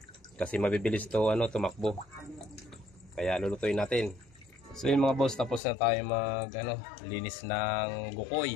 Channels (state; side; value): drops out; right; at 5.6 s